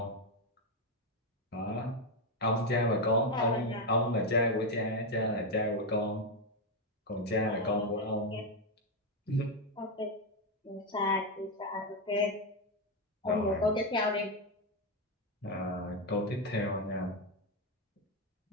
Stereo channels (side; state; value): both; normal; correlation 0.06